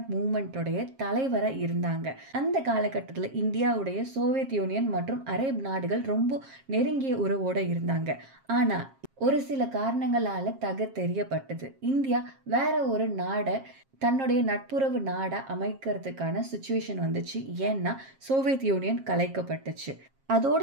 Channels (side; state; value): left; late; 7.4 ms